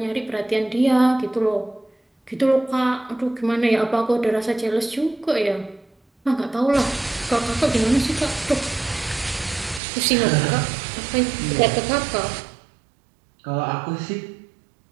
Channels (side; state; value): left; drops out; at 9.8 s